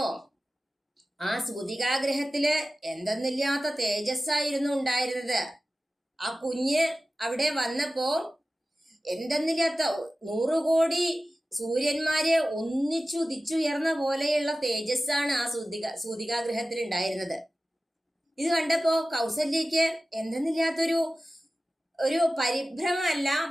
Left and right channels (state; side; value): normal; both; correlation 0.95